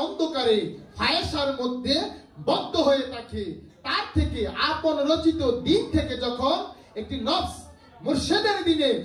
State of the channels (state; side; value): identical; both; correlation 1.00